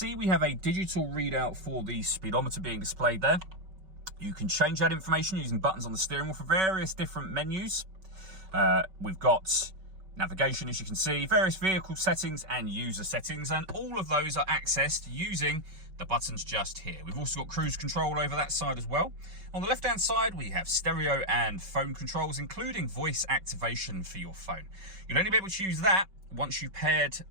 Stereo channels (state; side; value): late; left; 5.3 ms